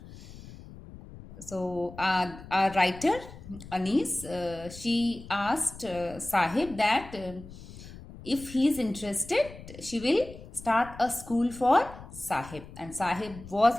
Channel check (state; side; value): noise; left; rumble, 16 dB below the sound